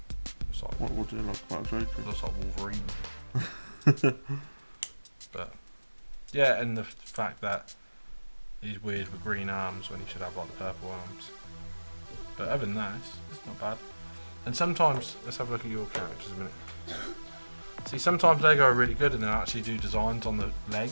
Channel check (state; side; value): inverted; both; correlation -1.00